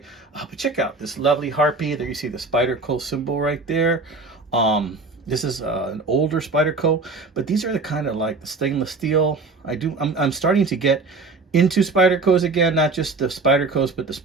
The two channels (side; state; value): left; quieter; 3.8 dB